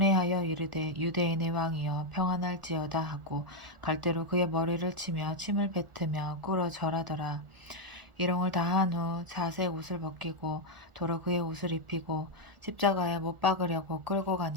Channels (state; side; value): late; left; 1.4 ms